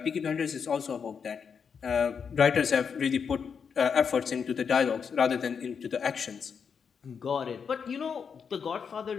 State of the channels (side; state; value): right; quieter; 6.5 dB